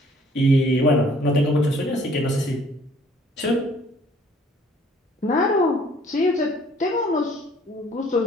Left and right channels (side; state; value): both; normal; correlation 0.58